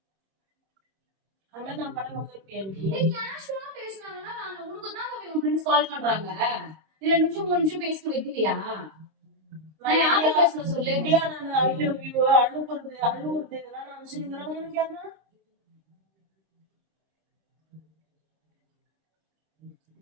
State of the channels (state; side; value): late; left; 26 ms